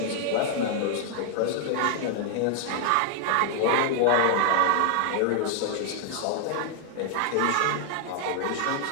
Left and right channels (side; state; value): both; different; correlation 0.00